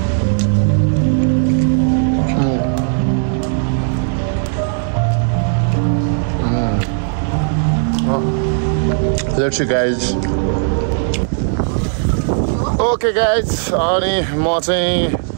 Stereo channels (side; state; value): left; silent; digital silence